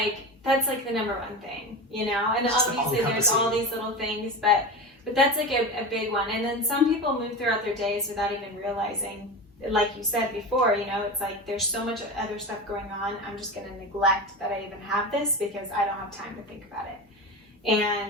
the number one thing, you know. And obviously, there's all these little things, but that's like a big one. And then some people move throughout their days without even realizing. Like you said before, you know, it's like there's so much other stuff going on. I'm just going to neglect that I even have this because I don't have time to think about it.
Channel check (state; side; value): normal; both; correlation 0.25